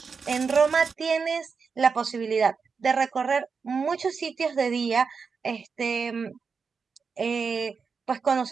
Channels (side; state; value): left; quieter; 5.4 dB